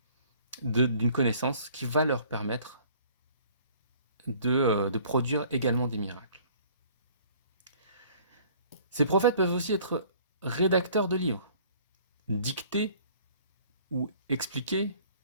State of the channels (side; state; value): both; inverted; correlation -0.54